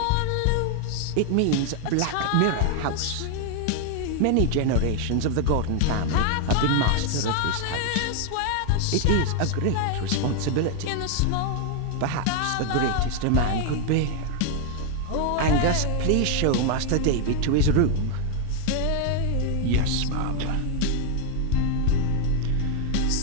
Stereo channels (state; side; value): different; both; correlation 0.00